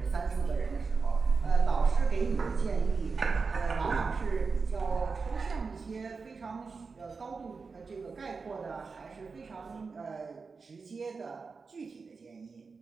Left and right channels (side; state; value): left; quieter; 4.7 dB